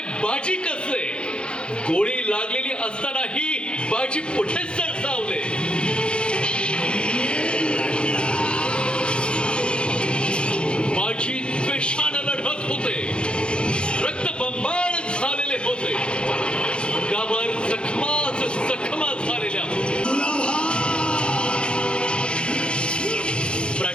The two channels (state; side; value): late; right; 0.055 ms